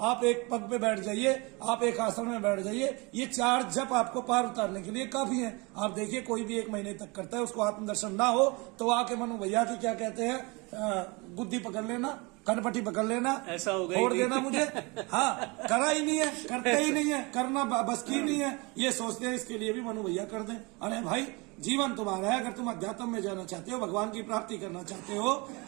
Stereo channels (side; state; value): left; quieter; 27.2 dB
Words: आप एक पग पे बैठ जाइए, आप एक आसन में बैठ जाइए। ये 4 जप आपको पार उतारने के लिए काफी है। आप देखिए कोई भी 1 महीने तक करता है, उसको आत्मदर्शन ना हो तो आके मनु भैया की क्या कहते हैं, बुद्धि पकड़ लेना, कनपट्टी पकड़ लेना, ऐसा हो गया, छोड़ देना मुझे। हाँ, करा ही नहीं है, करते ही नहीं है, करना बस की नहीं है, ये सोचते हैं इसके लिए भी मनु भैया कर दें। अरे भाई, जीवन तुम्हारा है, अगर तुम अध्यात्म में जाना चाहते हो, भगवान की प्राप्ति करना चाहते हो,